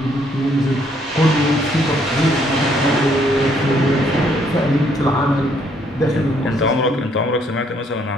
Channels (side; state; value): both; normal; correlation 0.68